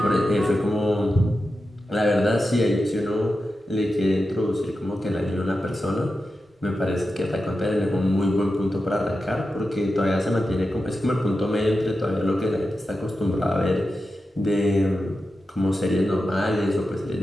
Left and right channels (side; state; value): both; normal; correlation 0.91